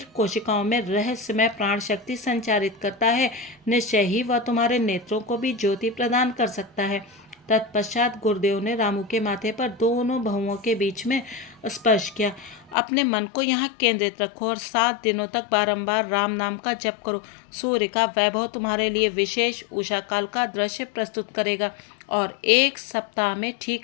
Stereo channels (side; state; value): right; drops out; at 12.8 s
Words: कोशिकाओं में रहस्यमय प्राण शक्ति संचारित करता है, निश्चय ही वह तुम्हारे नेत्रों को भी ज्योति प्रदान कर सकता है। तत्पश्चात गुरुदेव ने रामू के माथे पर दोनों बहुओं के बीच में स्पर्श किया। अपने मन को यहाँ केंद्रित रखो और 7 दिनों तक बारंबार राम नाम का जप करो। सूर्य का वैभव तुम्हारे लिए विशेष उषा काल का दृश्य प्रस्तुत करेगा। और 1 सप्ताह में